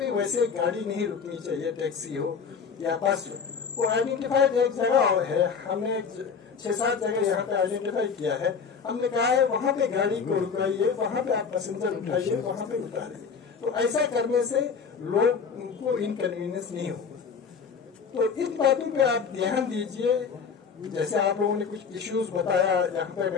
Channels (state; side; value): quieter; right; 5.9 dB